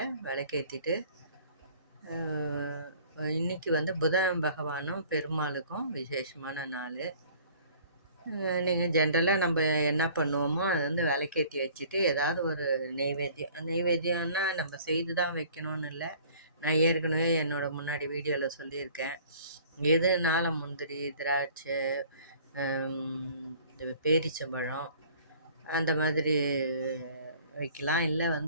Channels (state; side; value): inverted; both; correlation -0.52